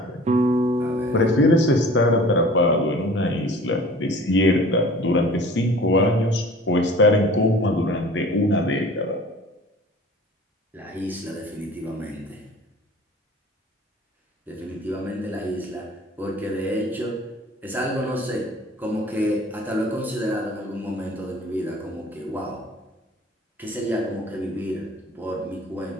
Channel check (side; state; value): both; normal; correlation 0.46